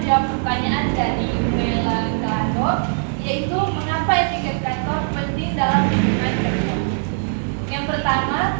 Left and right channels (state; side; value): silent; left; 65 dB below the other